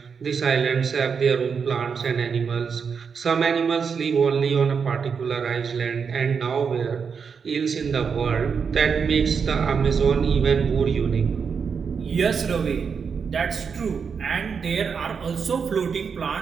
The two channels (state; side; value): quieter; left; 6.1 dB